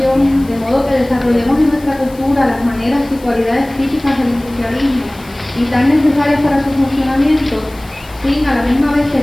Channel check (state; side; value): noise; left; hiss, 23 dB below the sound